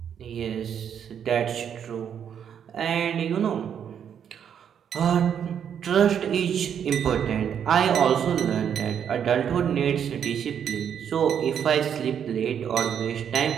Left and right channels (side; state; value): left; quieter; 8.4 dB